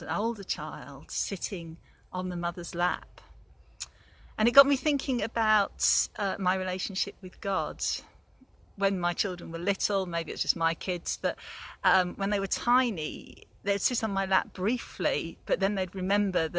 an older child, sitting on the mother's lap. And it got me thinking about my relationship with God. When my children were little, maybe it was just my kids, but when they were tiny, they'd sit on my lap briefly, but then they'd remember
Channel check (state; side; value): identical; both; correlation 1.00